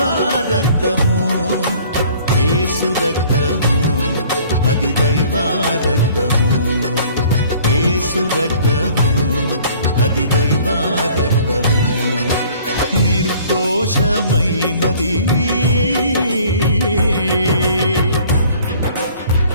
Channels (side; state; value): both; inverted; correlation -0.53